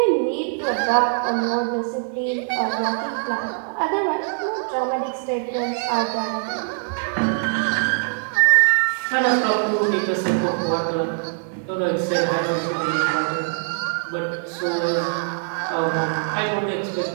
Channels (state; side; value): silent; left; digital silence